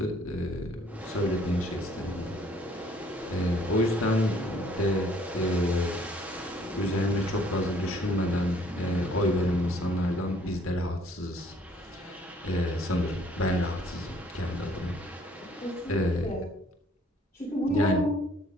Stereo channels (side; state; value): both; normal; correlation 0.60